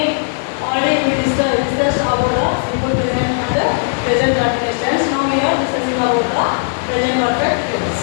already we discussed about the simple present and the present continuous tense. Now we are discussing about the present perfect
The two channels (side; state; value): right; silent; 68 dB below the other